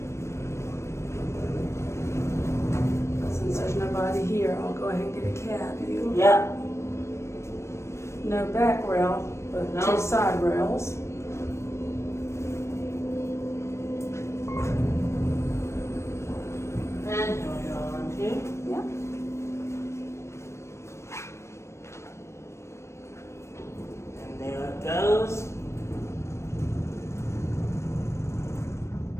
Since there's nobody here, I'll go ahead and get a cab. You? Yeah. No back rail, but No. 2 side rails.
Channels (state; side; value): late; right; 0.13 ms